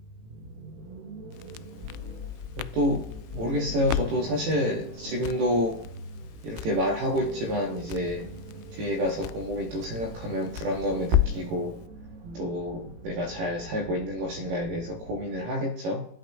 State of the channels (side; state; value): left; late; 18 ms